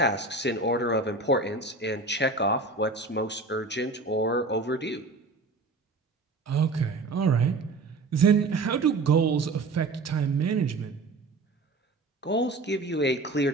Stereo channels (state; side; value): quieter; left; 3.5 dB